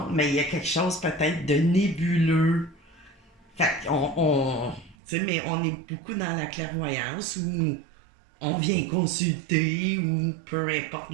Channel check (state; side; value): drops out; left; at 5.0 s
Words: mais il y a quelque chose peut-être de nébuleux. Fait qu'on. Tu sais, mais on est beaucoup dans la clairvoyance où on vient consulter ou peu importe